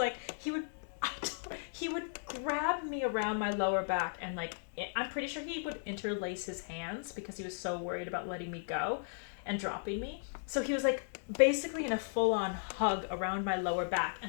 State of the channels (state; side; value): silent; right; 54 dB below the other